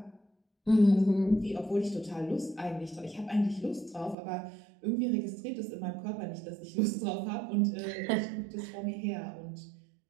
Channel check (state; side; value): drops out; left; at 4.2 s